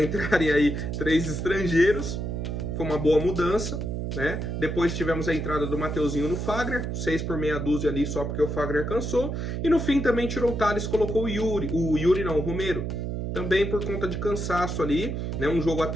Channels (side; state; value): right; noise; hum, 3 dB below the sound